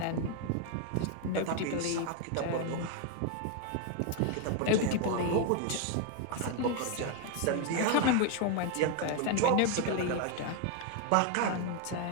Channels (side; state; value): both; different; correlation 0.01